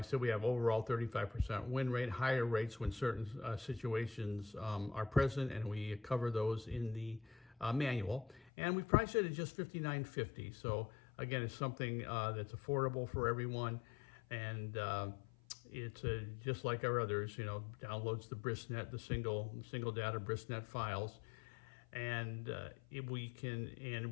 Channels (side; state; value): right; drops out; at 8.5 s